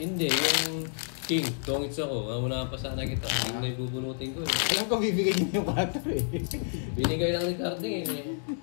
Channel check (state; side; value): silent; right; digital silence